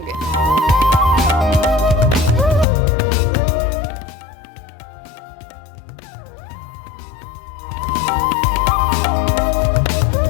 Overall, this was a fantastic things. We will look forward more and more things there.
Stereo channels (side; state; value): right; drops out; at 2.7 s